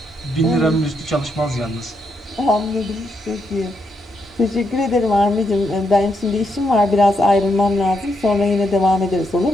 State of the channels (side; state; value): both; normal; correlation 0.80